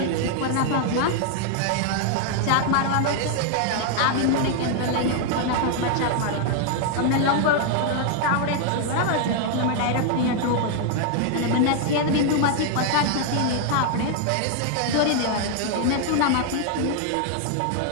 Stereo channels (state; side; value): different; both; correlation 0.00